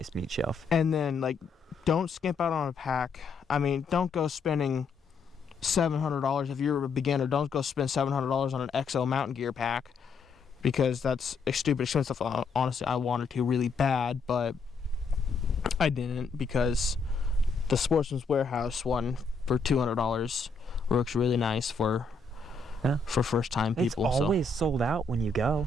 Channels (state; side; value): quieter; right; 4.2 dB